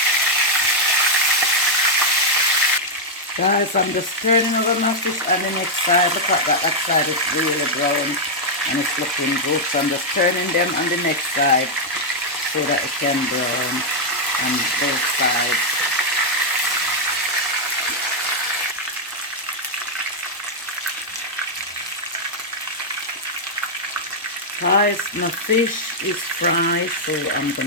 Guys, I'm just turning over my fish on the next side. Look at that, that side is really brown and it's looking good. So I'm just turning them on the next side so that it can brown on both sides. Guys, my fish is fried, so I'm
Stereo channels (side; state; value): both; normal; correlation -0.03